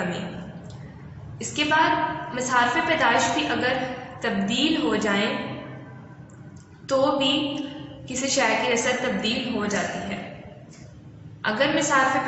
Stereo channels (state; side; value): identical; both; correlation 1.00